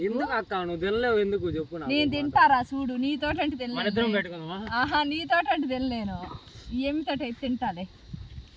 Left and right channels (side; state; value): both; identical; correlation 1.00